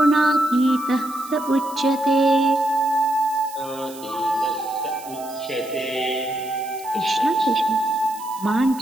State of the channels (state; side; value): noise; right; hiss, 18 dB below the sound